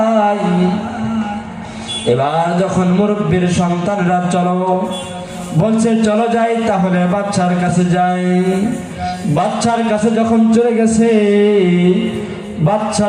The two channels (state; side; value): identical; both; correlation 1.00